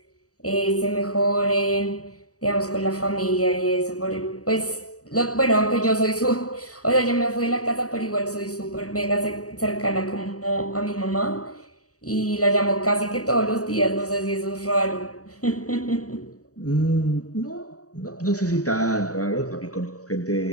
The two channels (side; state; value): right; late; 0.66 ms